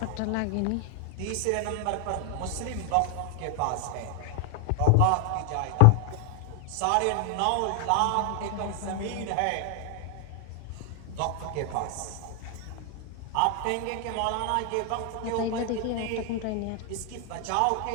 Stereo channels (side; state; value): both; different; correlation 0.00